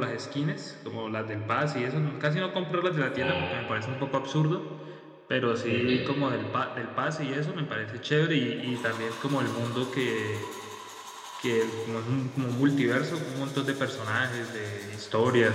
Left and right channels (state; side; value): identical; both; correlation 1.00